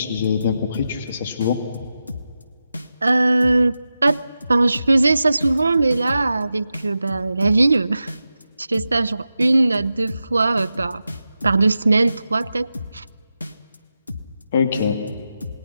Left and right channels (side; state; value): both; inverted; correlation -0.91